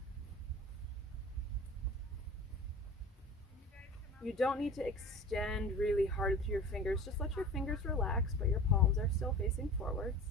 You don't need to extend really hard through your fingers. Just let your fingers relax, but your palms are still facing forwards.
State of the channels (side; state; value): both; normal; correlation 0.37